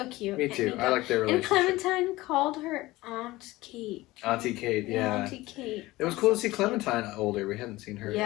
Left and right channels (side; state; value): right; quieter; 19.0 dB